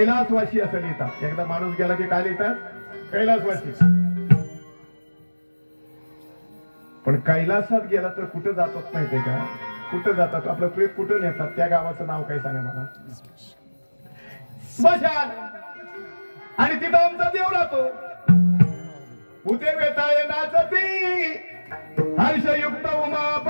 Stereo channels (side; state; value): both; inverted; correlation -1.00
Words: असं लिहितात. एकदा माणूस गेला की काय लिहितात, कैलासवासी. पण कैलासात गेला तर कुठं जातात माहितीये का, कुठं जातात, आपलं प्रेत कुठं नेतात, त्या गावाचं नाव काय सांगा मला. स्मशान. आणि तिथं आमचा देव राहतो. उते वेताळे नाचती हर्षयुक्त